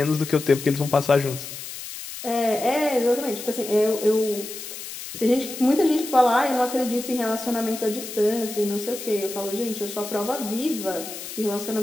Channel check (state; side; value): noise; left; hiss, 10 dB below the sound